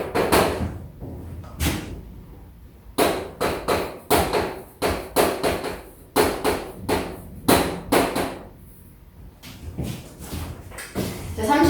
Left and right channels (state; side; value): identical; both; correlation 1.00